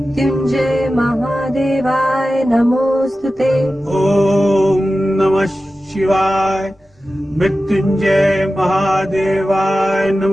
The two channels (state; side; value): normal; both; correlation 0.94